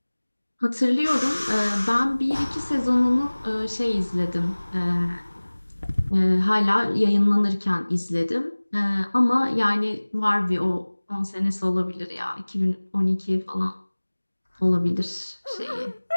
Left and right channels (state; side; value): inverted; both; correlation -1.00